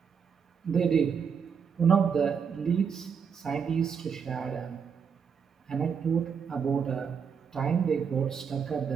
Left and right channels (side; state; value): left; quieter; 6.7 dB